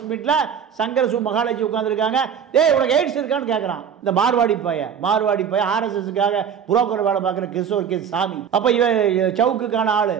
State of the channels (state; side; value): quieter; left; 7.9 dB